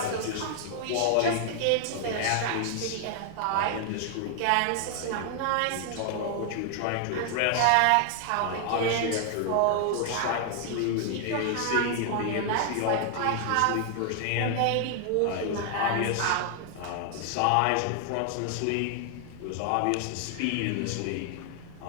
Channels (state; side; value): different; both; correlation 0.00